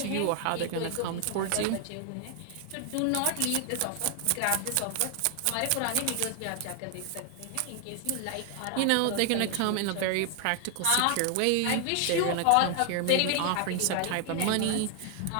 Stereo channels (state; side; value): different; both; correlation 0.00